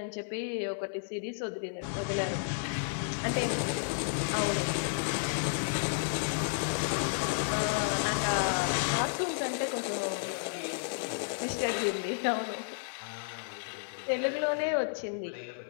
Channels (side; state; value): right; silent; 56 dB below the other